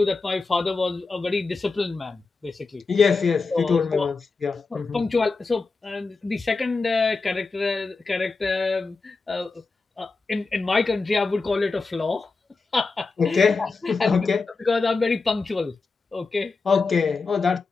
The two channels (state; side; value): quieter; right; 4.1 dB